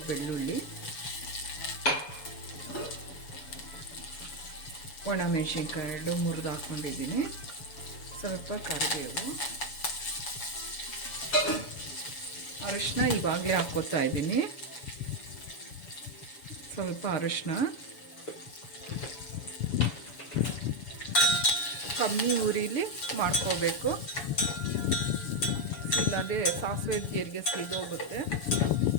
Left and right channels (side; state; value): right; late; 7.0 ms